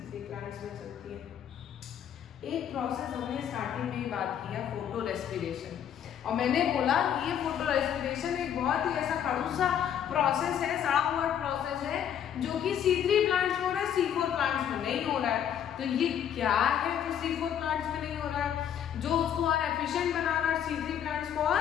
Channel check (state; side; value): quieter; right; 9.4 dB